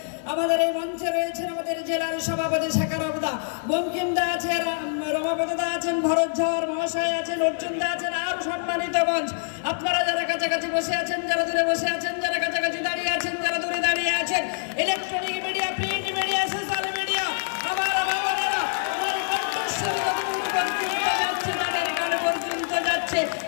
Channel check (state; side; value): silent; right; digital silence